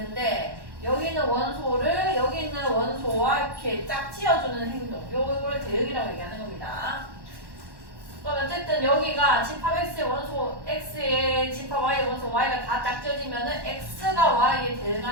여기 있는 원소를 여기 있는 원소와 이렇게 짝지어주는 행동, 요거를 대응이라고 얘기하는 겁니다. 그럼 어쨌든 여기가 집합 x의 원소 x의 집합 y의 원소 y가 다 짝지어지면은 x가 y에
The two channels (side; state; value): left; late; 1.1 ms